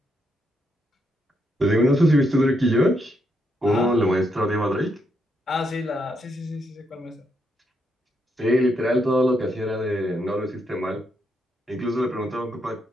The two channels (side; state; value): both; normal; correlation 0.79